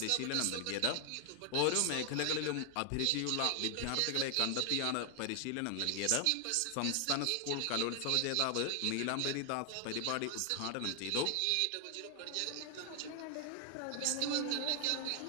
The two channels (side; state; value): both; different; correlation 0.00